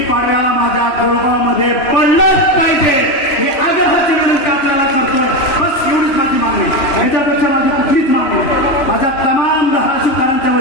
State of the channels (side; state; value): right; late; 3.0 ms